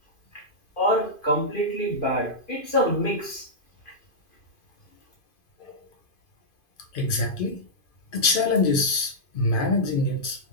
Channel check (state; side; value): late; right; 2.5 ms